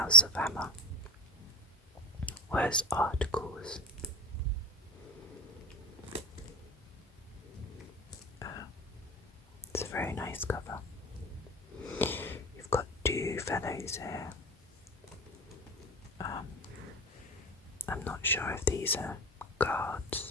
of Hammer was articles. It's a very nice cover. You've got 2 fellows here. I'm not sure if these are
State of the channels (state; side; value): normal; both; correlation 0.25